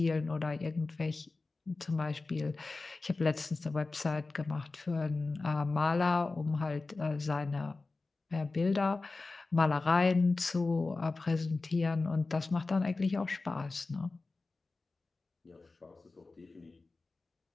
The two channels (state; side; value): quieter; right; 3.6 dB